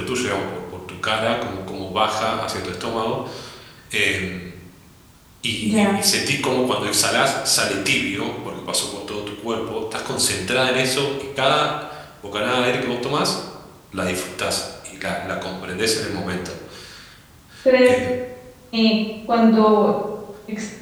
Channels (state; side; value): identical; both; correlation 1.00